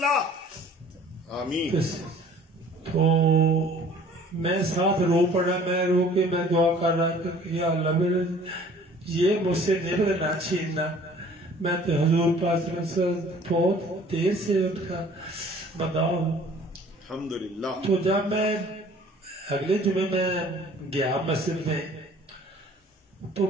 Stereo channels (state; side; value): normal; both; correlation 0.52